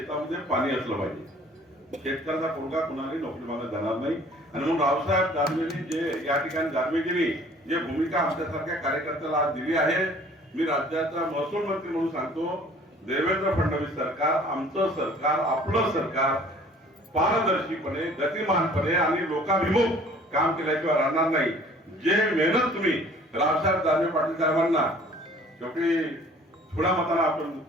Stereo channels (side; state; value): both; normal; correlation 0.52